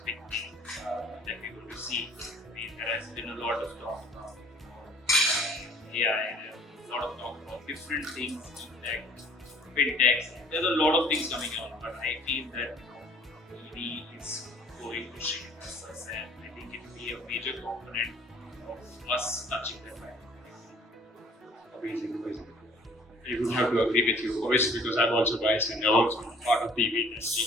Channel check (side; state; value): both; normal; correlation 0.54